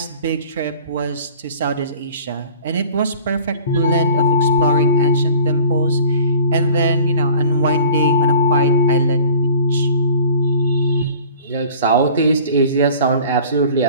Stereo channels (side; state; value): both; inverted; correlation -0.46